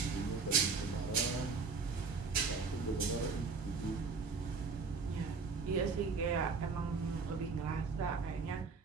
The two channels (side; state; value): left; quieter; 4.8 dB